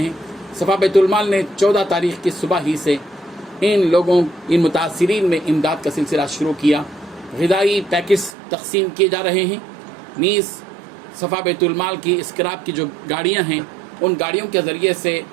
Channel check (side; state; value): left; drops out; at 8.3 s